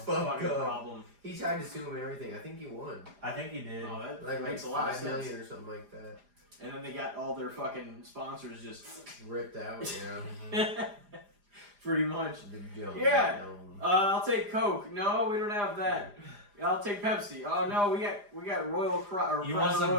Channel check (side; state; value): left; late; 4.9 ms